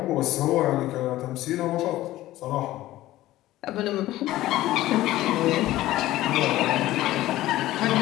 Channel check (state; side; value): quieter; right; 15.7 dB